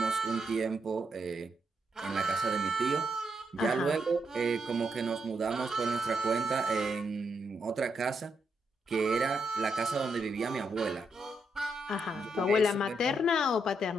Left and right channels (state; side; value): normal; both; correlation 0.80